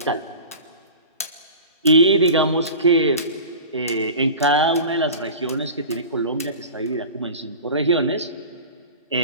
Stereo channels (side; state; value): both; inverted; correlation -0.36